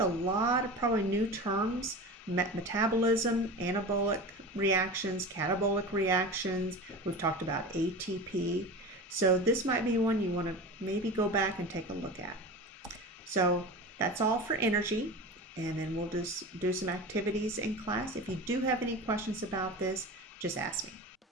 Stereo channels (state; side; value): normal; both; correlation 0.31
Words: lot of probably new terms: metabolism, anabolic reactions, catabolic reactions. We've talked about ATP. So this might be one you want to maybe go back and take a look at. So that's all for energy. And then we'll just do some activities in class. If you do have any questions about this, just ask me.